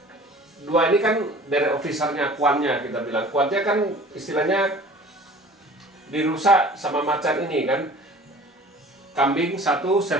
2 ini kan dari officernya, kuannya kita bilang. Kuannya kan istilahnya dirusak sama macan ini kan. Kambing 1,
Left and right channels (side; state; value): both; normal; correlation 0.45